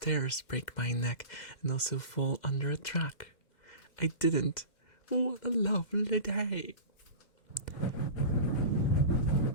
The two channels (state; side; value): late; right; 2.1 ms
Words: break my neck, and also fall under a truck. I didn't. What a lovely day.